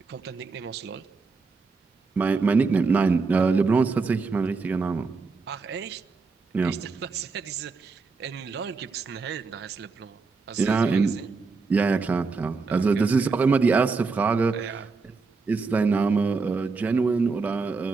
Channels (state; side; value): quieter; left; 4.4 dB